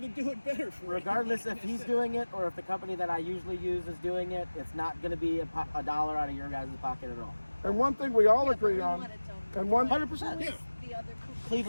do it better for regardless if everybody. he's doing it or if the company that I usually use is doing it, it's not going to be a dollar out of your guys' pocket at all. And one thing we all Yeah, but agree we on, want it done and right. one 100%. Who Yeah. is the other company?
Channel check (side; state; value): both; inverted; correlation -1.00